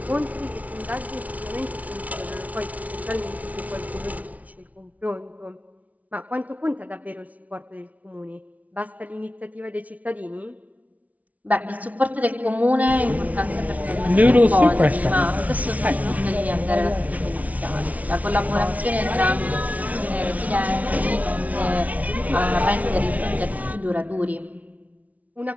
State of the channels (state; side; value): late; left; 0.070 ms